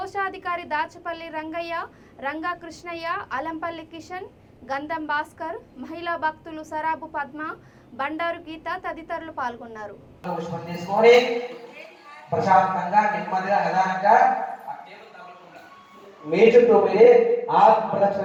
దాచపల్లి రంగయ్య, రంగా కృష్ణయ్య, అలంపల్లి కిషన్, గంధం భాస్కర్, మహిళా భక్తులు సరాబు పద్మ, బండారు గీత తదితరులు పాల్గొన్నారు. ప్రశాంతంగా నెమ్మదిగా నిదానంగా మీ చుట్టూ మీరే ఆత్మ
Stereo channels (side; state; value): both; identical; correlation 1.00